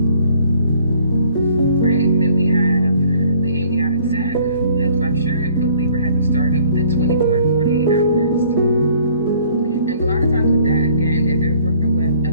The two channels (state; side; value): inverted; both; correlation -0.57